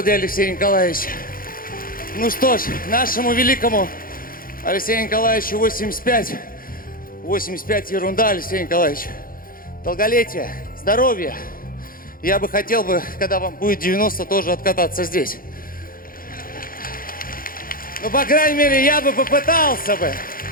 для Алексея Николаевича. Ну что ж, нашему великому Алексею Николаевичу 85. 85 ерунда, Алексей Николаевич. Долголетие, здоровье. Я бы хотел бы, когда вам будет 90, тоже откататься здесь. Ну, по крайней мере, я бы попытался бы.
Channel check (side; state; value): right; late; 0.41 ms